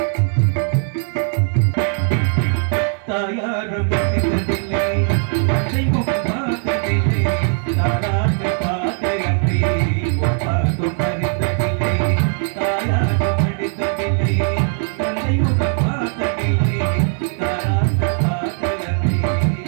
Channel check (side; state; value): left; silent; 57 dB below the other